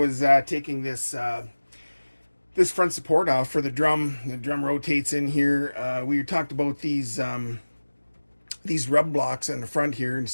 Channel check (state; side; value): inverted; both; correlation -1.00